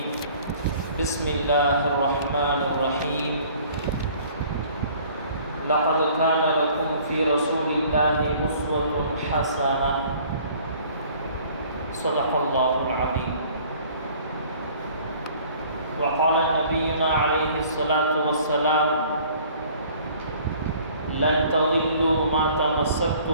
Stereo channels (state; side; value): inverted; both; correlation -0.53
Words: بسم الله الرحمن الرحيم لقد كان لكم في رسول الله أسوة حسنة صدق الله العظيم. وقال نبينا عليه الصلاة والسلام لن تضلوا ما